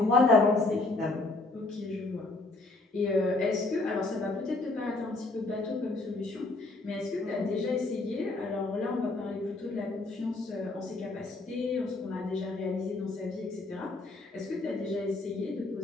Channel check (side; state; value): right; quieter; 3.1 dB